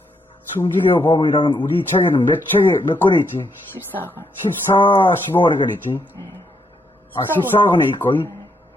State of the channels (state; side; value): normal; both; correlation 0.76